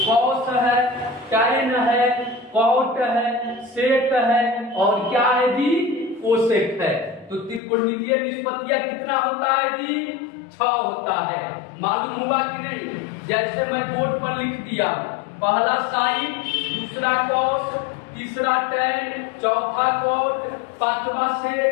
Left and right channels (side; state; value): right; drops out; at 7.6 s